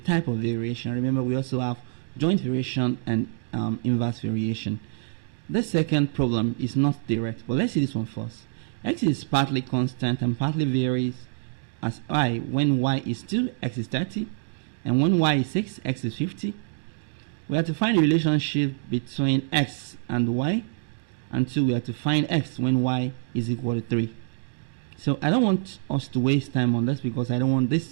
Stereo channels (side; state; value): left; silent; digital silence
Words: of variation. Remember, we also have joint variation and inverse variation. The second problem is not direct, but let's see this one first. X is partly constant and partly varies as I when y is 2, x is 30, and when y is 6, x is 50. We have to find the relationship between x and y, and 2, we have to find x when y is equal to 3. So I don't want us to waste time on this because I don't want